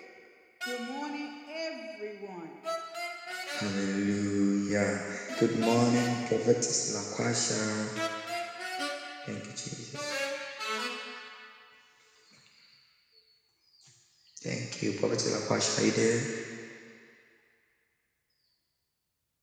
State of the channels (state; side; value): identical; both; correlation 1.00